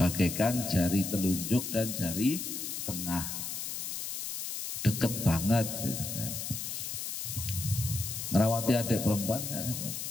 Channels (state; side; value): noise; left; hiss, 5 dB below the sound